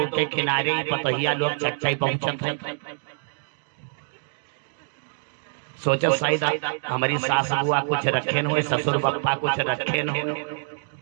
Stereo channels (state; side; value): silent; left; digital silence